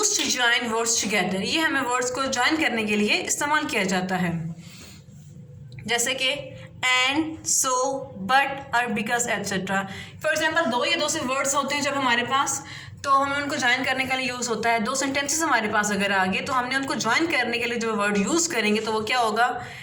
to join words together, ये हमें वर्ड्स को ज्वाइन करने के लिए इस्तेमाल किया जाता है। जैसे कि एंड, सो, बट और बिकॉज एट्सेट्रा। फॉर एग्जाम्पल, दो या दो से वर्ड्स होते हैं जब हमारे पास, तो हमें उनको ज्वाइन करने के लिए यूज़ होता है। दो सेंटेंसेस हमारे पास अगर आ गए तो हमने उनको ज्वाइन करने के लिए जो वर्ड यूज़ करेंगे तो वो क्या होगा,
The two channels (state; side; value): identical; both; correlation 1.00